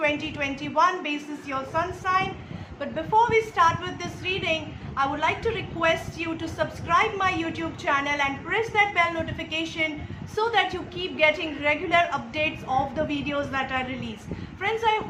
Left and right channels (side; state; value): both; identical; correlation 1.00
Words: basis your sun sign. But before we start with this reading, I would like to request you to subscribe my YouTube channel and press that bell notification so that you keep getting regular updates of the videos that I release. Friends, I